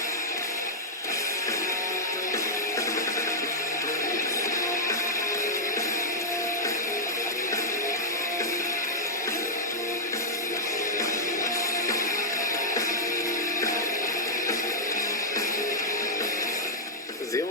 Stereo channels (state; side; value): normal; both; correlation -0.04